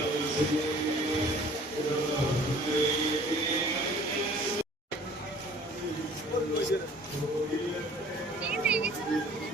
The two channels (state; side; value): normal; both; correlation 0.51